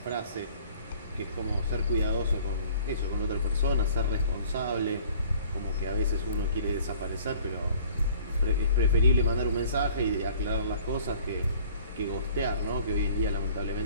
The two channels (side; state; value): both; inverted; correlation -0.51